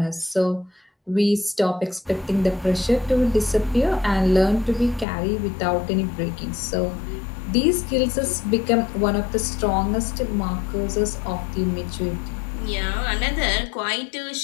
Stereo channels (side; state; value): right; drops out; at 5.1 s